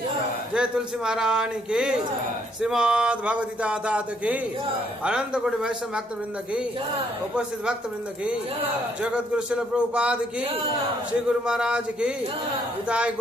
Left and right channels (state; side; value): normal; both; correlation 0.70